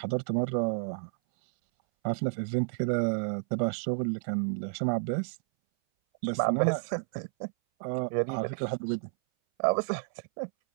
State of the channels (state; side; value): silent; left; 57 dB below the other